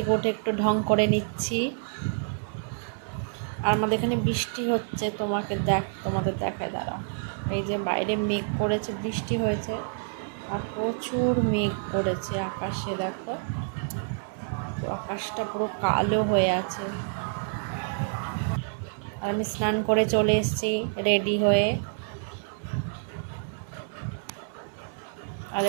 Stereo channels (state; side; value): silent; left; 59 dB below the other